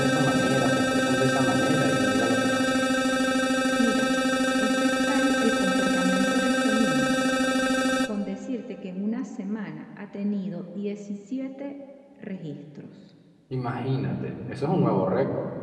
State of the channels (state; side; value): identical; both; correlation 1.00